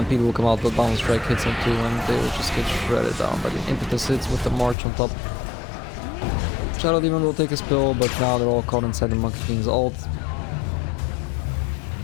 will come out, but bounce strike hits him too, and they will just get shredded down by the impetus hits with the march on top. Shadow Demon will take a spill, but now they're all caught inside the Monkey King's ult.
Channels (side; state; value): right; drops out; at 4.8 s